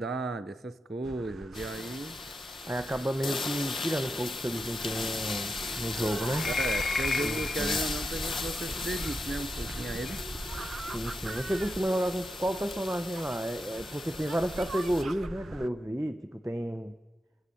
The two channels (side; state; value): both; normal; correlation 0.87